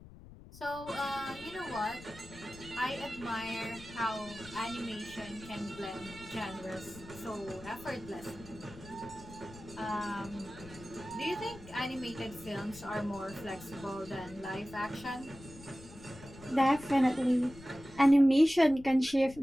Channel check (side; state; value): left; noise; rumble, 18 dB below the sound